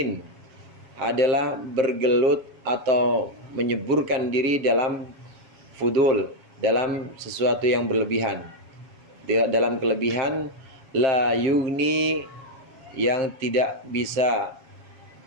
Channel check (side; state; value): left; late; 7.3 ms